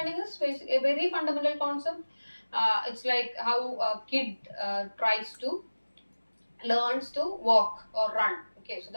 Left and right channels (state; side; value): inverted; both; correlation -1.00